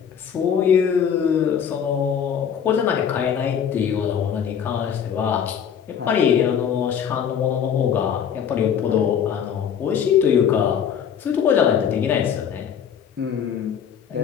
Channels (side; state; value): right; quieter; 8.1 dB